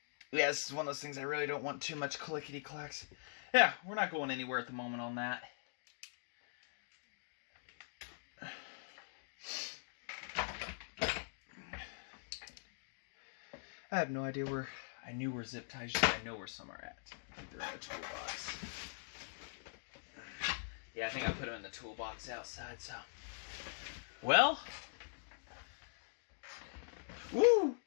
Yeah, this is one of those things I really don't want too much clickety-clacks. Yeah, we're not going anywhere at the moment on that. I have no idea where... I knew where zip ties are. I know where some are at. I think they're in the toolbox. Yeah, I think I put them in the toolbox outside, so... Well... Woo!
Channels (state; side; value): silent; right; digital silence